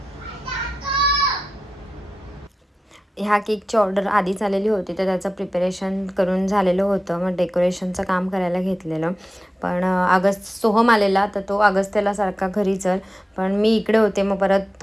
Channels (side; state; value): both; normal; correlation 0.93